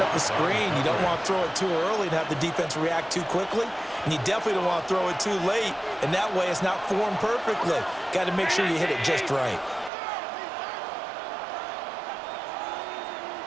up the screen. You don't want to throw it too early and have the defense react too quickly. And you definitely don't want to throw it too late, and that way it's not formed perfectly. Got to make sure you hit it just right.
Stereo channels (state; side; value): drops out; left; at 9.9 s